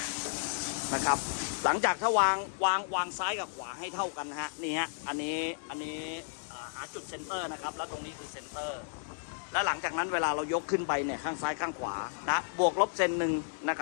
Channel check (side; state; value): right; silent; digital silence